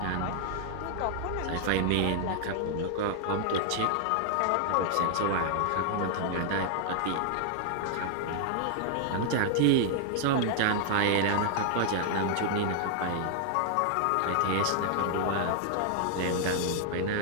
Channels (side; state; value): both; different; correlation 0.00